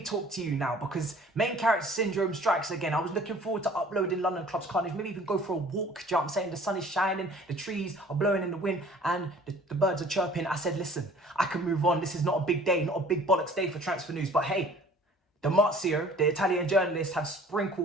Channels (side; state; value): both; normal; correlation 0.51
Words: to you now because main character syndrome strikes again. I was looking forward to uploading London Clubs Carnage, maybe even go for a walk. Do you know what I'm saying? The sun is shining, the trees are blowing in the wind and the birds are chirping. I said, listen, I can move on. This is not a big day, not a big bollocks day for transfer news. But hey, the Marzio, the Italian journalists, have